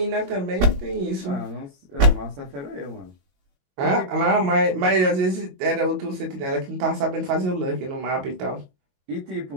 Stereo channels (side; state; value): left; late; 22 ms